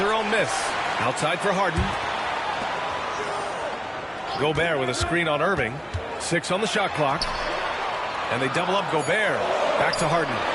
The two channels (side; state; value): both; identical; correlation 1.00